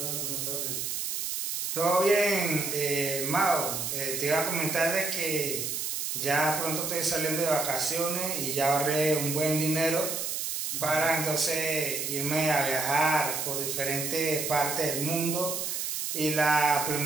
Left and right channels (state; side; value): noise; right; hiss, 2 dB below the sound